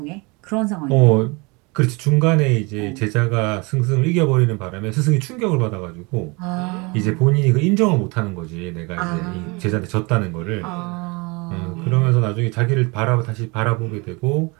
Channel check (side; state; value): left; quieter; 27.7 dB